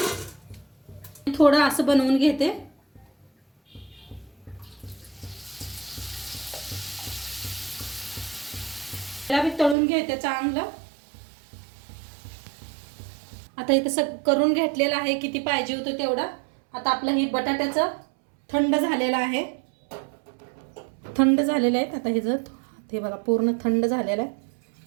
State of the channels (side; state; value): left; drops out; at 9.8 s